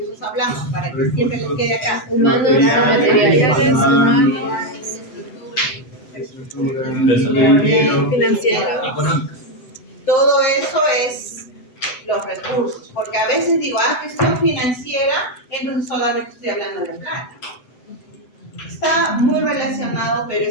hablamos? Para que siempre les quede acá. humanos y materiales, humanos, estructura, financieros. Todo eso es los recursos, porque a veces digo, gestión financiera, entonces solamente estoy hablando de plata. Está muy relacionado, pero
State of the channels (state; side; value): late; right; 7.9 ms